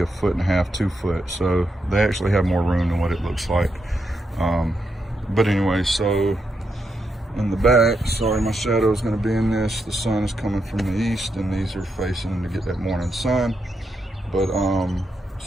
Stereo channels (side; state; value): both; normal; correlation 0.83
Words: 1.5 foot, 2 foot, so they actually have more room than what it looks like. But anyway, so in the back, sorry, my shadow is going to be in this. The sun is coming from the east, and these are facing to get that morning sun. But